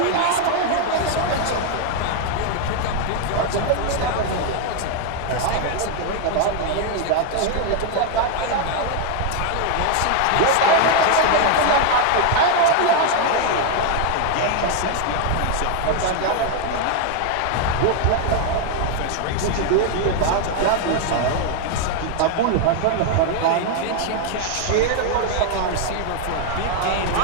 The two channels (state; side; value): different; both; correlation 0.00